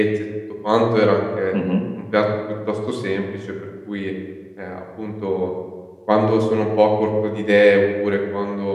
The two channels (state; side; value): identical; both; correlation 1.00